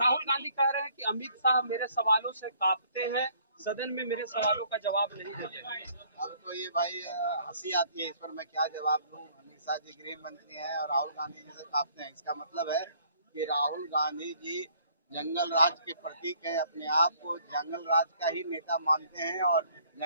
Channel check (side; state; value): both; inverted; correlation -0.61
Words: गांधी कह रहे हैं कि अमित शाह मेरे सवालों से कांपते हैं, सदन में मेरे सवालों का जवाब नहीं देते। अब तो ये भाई हंसी आती है, इस पर मैं क्या जवाब दूं। अमित शाह जी गृह मंत्री हैं और राहुल गांधी जी से कांपते हैं, इसका मतलब है कि राहुल गांधी जी जंगल राज के प्रतीक हैं, अपने आप को जंगल राज का ही नेता मानते हैं। और